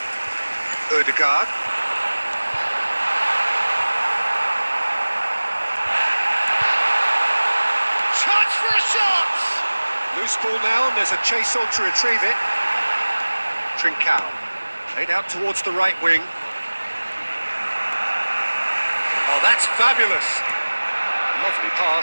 Ødegaard. Chance for a shot! Loose ball now, and there's a chase on to retrieve it. Trincao. Played out towards the right wing. Oh, that's fabulous! Lovely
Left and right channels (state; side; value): inverted; both; correlation -1.00